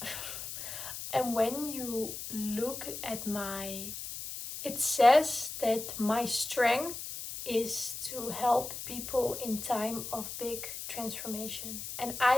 And when you look at it says that my strength is to help people in time of big transformation. And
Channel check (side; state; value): left; noise; hiss, 8 dB below the sound